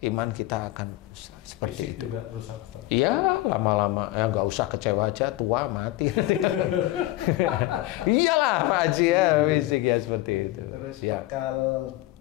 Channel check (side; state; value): right; quieter; 17.1 dB